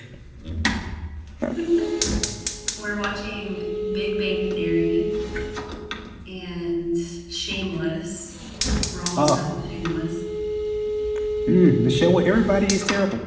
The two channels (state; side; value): identical; both; correlation 1.00